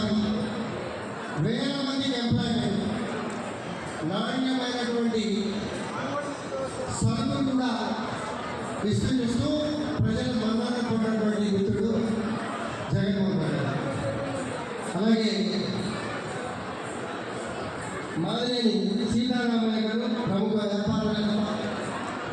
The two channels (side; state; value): both; identical; correlation 1.00